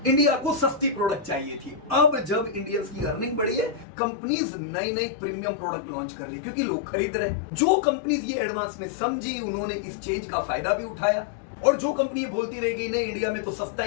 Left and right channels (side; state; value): right; drops out; at 3.9 s